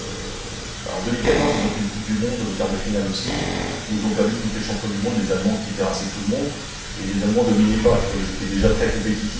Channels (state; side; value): identical; both; correlation 1.00